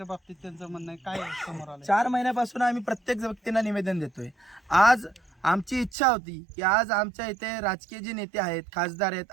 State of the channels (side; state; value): left; drops out; at 6.0 s